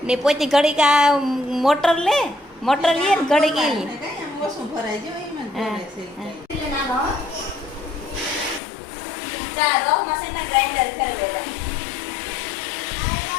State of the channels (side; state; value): right; drops out; at 8.6 s